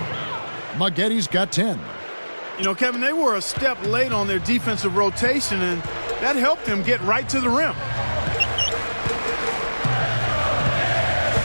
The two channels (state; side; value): inverted; both; correlation -1.00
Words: Moghetti's got 10. You know, Kevin, they were a step late on their defensive rotation, and that helped them get right to the rim.